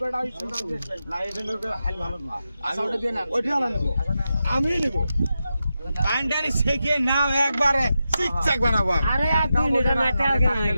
না এটা নৌকা হাল ভালো না আচ্ছা ওটা দিয়ে না ওইটা না নেব আমি নেব কান্ডারি শেখে নাও একবারে চিকচাক বানাবো আরে আর 2 লিটার মেটা আগে না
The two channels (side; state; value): both; inverted; correlation -0.89